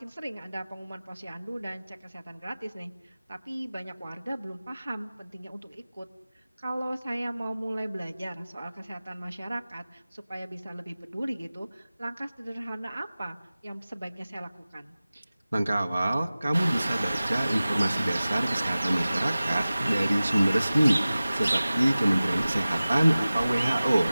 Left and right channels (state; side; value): inverted; both; correlation -0.97